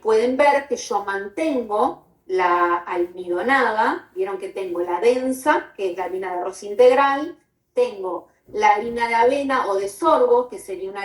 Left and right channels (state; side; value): identical; both; correlation 1.00